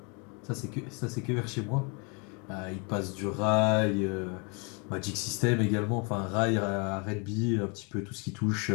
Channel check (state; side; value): quieter; right; 33.0 dB